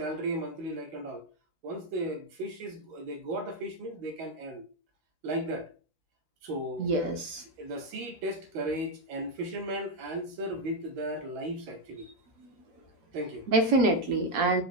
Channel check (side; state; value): left; late; 6.3 ms